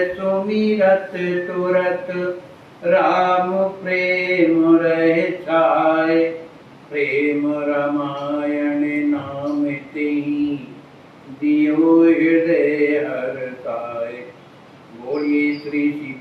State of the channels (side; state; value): both; identical; correlation 1.00